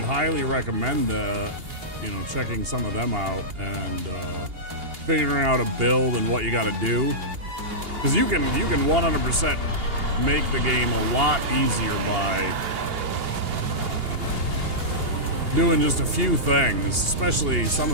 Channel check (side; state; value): left; late; 2.8 ms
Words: highly recommend checking some of them out and figuring out a build and what you got to do. Because you can 100% make the game a lot easier by doing just a few things, especially some